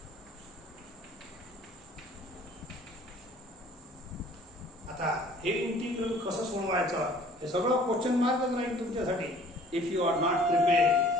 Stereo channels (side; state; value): both; normal; correlation 0.53